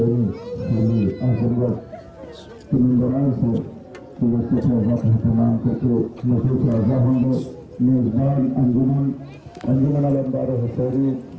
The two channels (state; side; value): identical; both; correlation 1.00